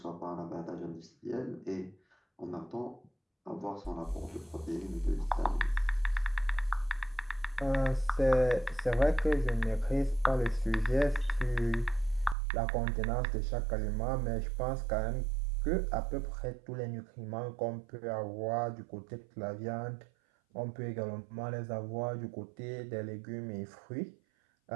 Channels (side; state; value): left; drops out; at 12.4 s